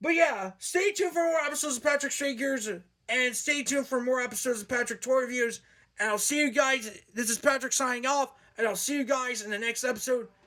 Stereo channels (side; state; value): both; identical; correlation 1.00